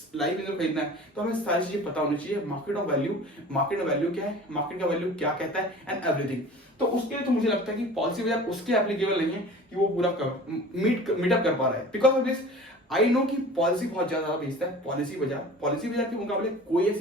लाइफ इंश्योरेंस खरीदना है तो हमें सारी चीजें पता होनी चाहिए। मार्केट ऑफ वैल्यू क्या है, मार्केट का वैल्यू क्या कहता है एंड एवरीथिंग। तो उसके लिए तो मुझे लगता है कि पॉलिसी बाजार उसके एप्लीकेबल नहीं है कि वो पूरा मीटअप कर पा रहा है। Because of this I know कि पॉलिसी बहुत ज्यादा बेचता है पॉलिसी बाजार के मुकाबले कोई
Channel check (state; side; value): normal; both; correlation 0.41